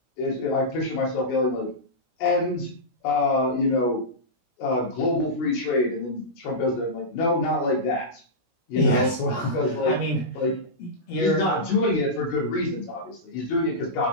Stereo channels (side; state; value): right; late; 17 ms